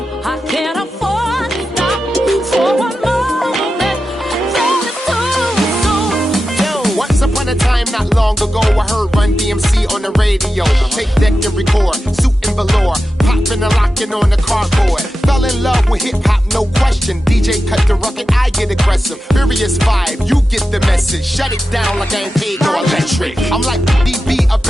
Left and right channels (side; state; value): both; normal; correlation 0.91